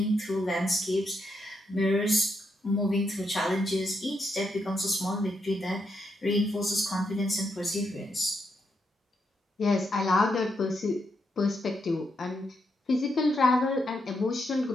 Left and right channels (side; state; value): both; normal; correlation 0.81